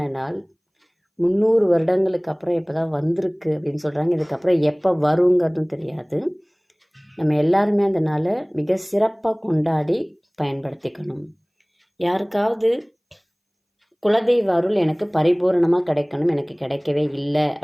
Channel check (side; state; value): both; identical; correlation 1.00